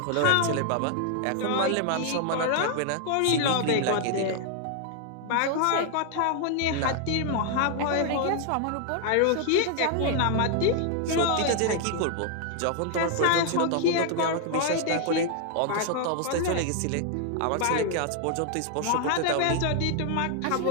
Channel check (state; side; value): different; both; correlation 0.00